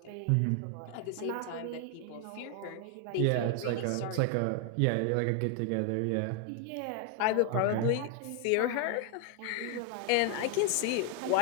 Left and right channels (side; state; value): both; different; correlation 0.01